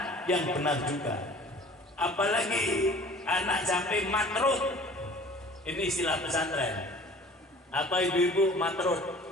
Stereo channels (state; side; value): normal; both; correlation 0.47